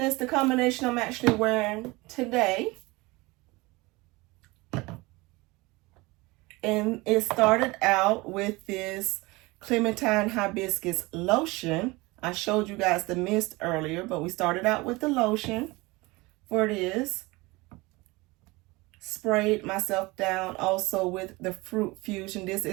the combination I'm actually wearing today. And it started out with this Clementine Hibiscus lotion. I showed you guys the mist earlier, but we started out with the lotion for this. Sprayed myself down also with the Fruit Fusion. This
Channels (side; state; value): left; quieter; 23.1 dB